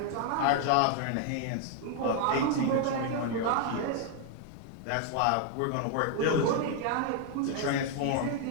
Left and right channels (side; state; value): both; different; correlation 0.00